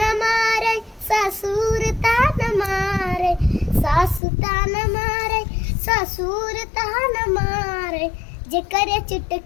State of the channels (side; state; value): right; drops out; at 4.2 s